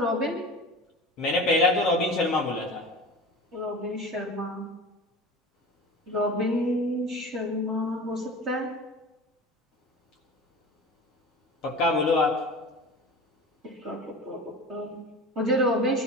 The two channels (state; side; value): normal; both; correlation 0.34